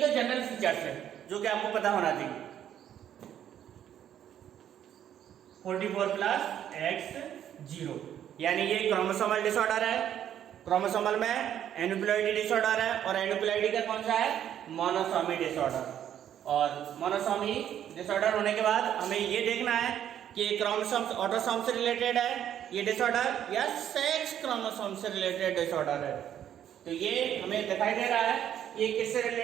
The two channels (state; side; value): quieter; left; 10.2 dB